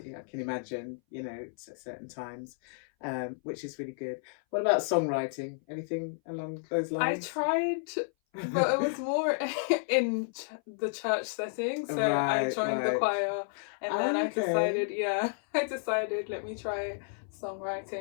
Yeah, I can imagine, at certain times, which is really good. What about songwriting? Anything along those I lines? tried, but it was more in the church setting. So I Right, joined the right. choir, and then I Okay. decided, yeah, I decided let me try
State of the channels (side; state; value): right; silent; 57 dB below the other